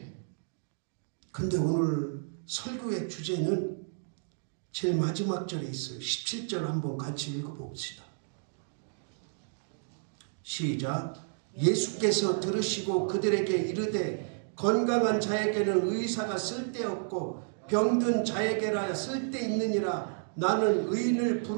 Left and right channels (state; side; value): silent; left; digital silence